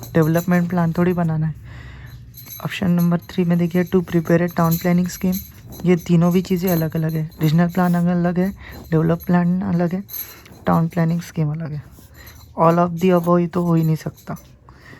डेवलपमेंट प्लान थोड़ी बनाना है। ऑप्शन नंबर 3 में देखिए to prepare a town planning scheme, ये तीनों भी चीज़ें अलग अलग है, रीजनल प्लान अलग है, डेवलप प्लान अलग है, टाउन प्लानिंग स्कीम अलग है। ऑल ऑफ दी अबव ये तो हो ही नहीं सकता,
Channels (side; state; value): both; identical; correlation 1.00